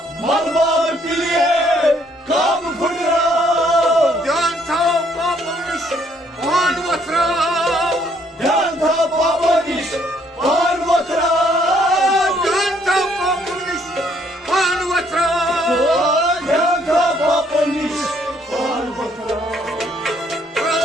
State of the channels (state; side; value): normal; both; correlation 0.67